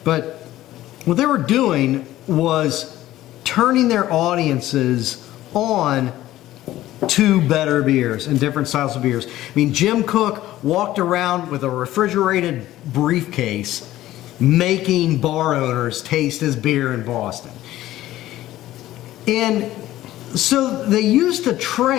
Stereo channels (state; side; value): quieter; right; 14.9 dB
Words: but what they were doing was turning their audiences on to better beers and different styles of beers. Jim Koch walked around with a refrigerated briefcase making bar owners taste his beer in Boston. And so they used to